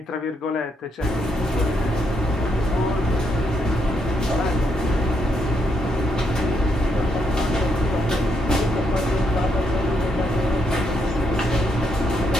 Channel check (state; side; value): normal; both; correlation 0.78